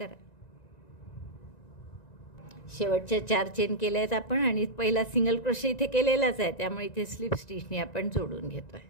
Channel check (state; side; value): late; right; 1.9 ms